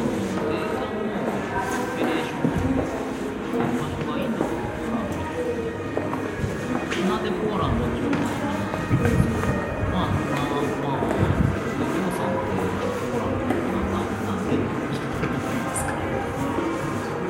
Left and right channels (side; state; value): both; identical; correlation 1.00